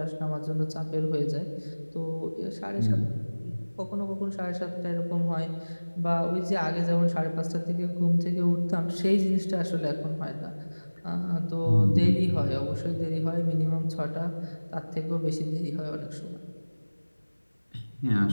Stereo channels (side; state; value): both; inverted; correlation -1.00